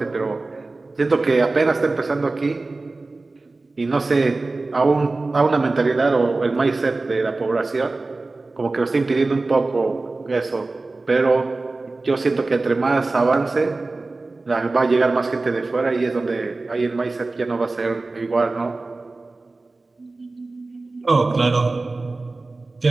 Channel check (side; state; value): left; quieter; 3.4 dB